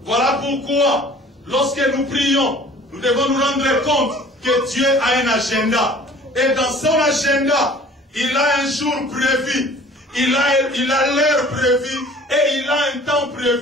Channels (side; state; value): both; normal; correlation 0.49